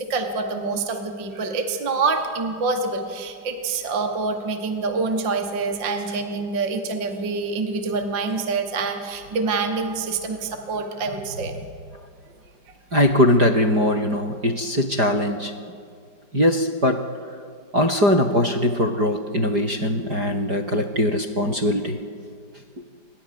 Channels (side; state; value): left; late; 4.9 ms